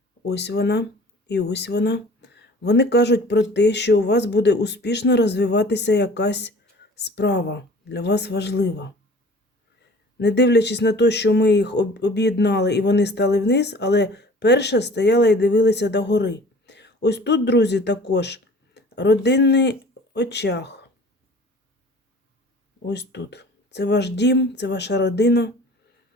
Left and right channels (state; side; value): normal; both; correlation 0.47